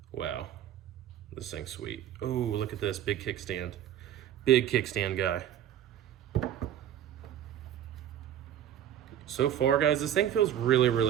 Wow, this thing's sweet. Oh, look at this, big kickstand. Big kickstand guy. So far, guys, this thing feels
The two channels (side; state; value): left; quieter; 10.8 dB